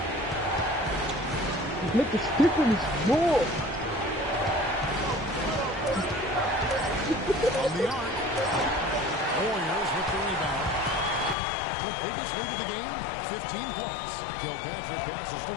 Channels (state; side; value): drops out; right; at 11.4 s